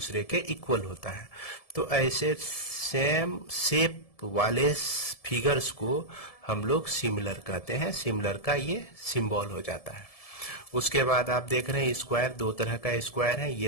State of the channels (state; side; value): late; right; 1.7 ms